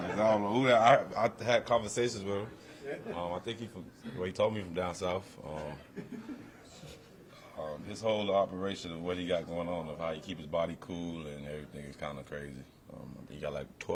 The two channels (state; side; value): identical; both; correlation 1.00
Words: I don't know who that. I had conversations with him. I think he told me from down south. This whole operation of what he got going on, of how he keep his body cool and everything is kind of crazy. He got like